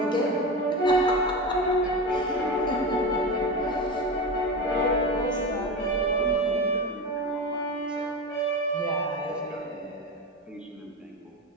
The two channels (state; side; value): normal; both; correlation 0.22